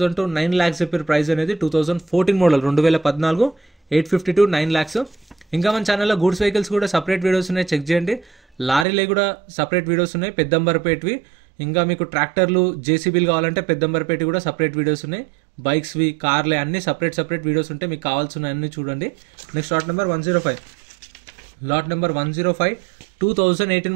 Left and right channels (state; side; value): drops out; left; at 8.8 s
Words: to 9 lakhs చెప్పారు ప్రైస్ అనేది. 2014 మోడల్ 2014 850 to 9 lakhs. ఇంకా మన ఛానల్లో గూడ్స్ వెహికల్స్ కూడా సపరేట్ వీడియోస్ ఉన్నాయి, చెక్ చేయండి. లారీలే కూడా సపరేట్ వీడియోస్ ఉన్నాయి, పెద్దంబర్పేటవి. ఇంకా మీకు ట్రాక్టర్లు, జేసీబీలు కావాలంటే పెద్దంబర్పేట కూడా సపరేట్ వీడియోస్ ఉన్నాయి. బైక్స్వి, కార్లే అన్ని సపరేట్ వీడియోస్ ఉంటాయి, మీకు కావాల్సిన అన్ని చూడండి. Next lot number 105. Lot number 105 2018